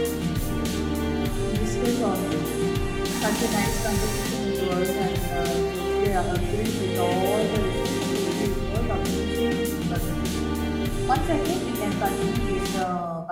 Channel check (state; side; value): identical; both; correlation 1.00